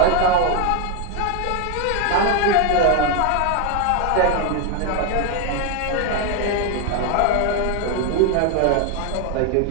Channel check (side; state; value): both; different; correlation 0.01